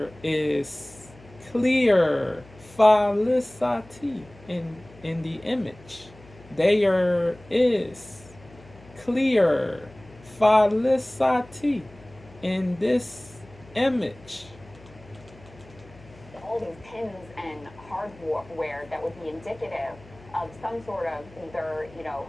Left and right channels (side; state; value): left; noise; hum, 23 dB below the sound